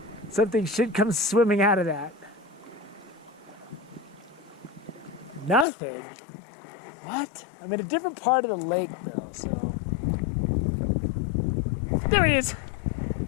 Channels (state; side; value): drops out; right; at 5.7 s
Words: Something should come swimming out of that. Nothing? What? I'm in a different part of the lake though, so. There he is.